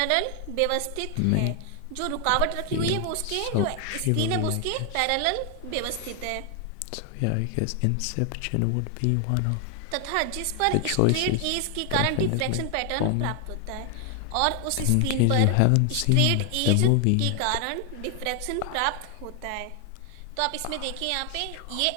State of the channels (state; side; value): different; both; correlation 0.00